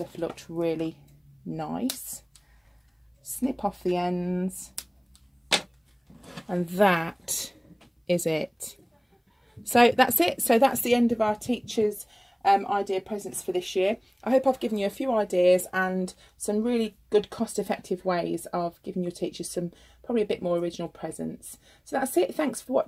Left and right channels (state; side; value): identical; both; correlation 1.00